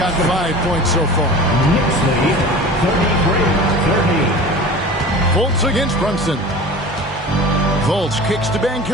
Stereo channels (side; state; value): both; normal; correlation 0.37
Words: 5 points so far. Knicks lead 33-30. Fultz against Brunson. Fultz kicks to